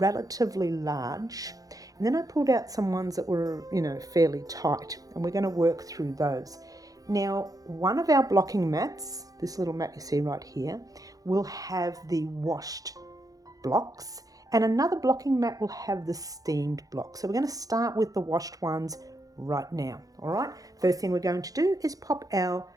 large, and then I pulled out some ones that were, fairly tight, and we're going to work through those. Now, one of our blocking mats, this little mat you see right here, will have the washed blocks, and another blocking mat will have the steamed blocks. So we're going to start with the washed ones right now. All right, first thing we're going to do is pop our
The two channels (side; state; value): left; late; 0.17 ms